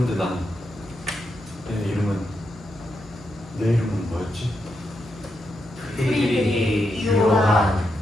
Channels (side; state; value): both; normal; correlation 0.83